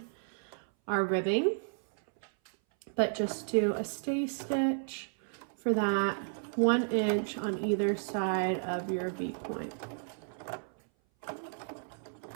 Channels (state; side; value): silent; left; 56 dB below the other